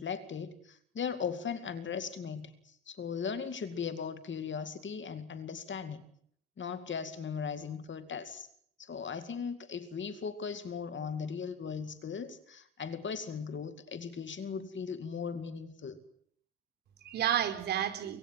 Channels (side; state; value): both; normal; correlation 0.14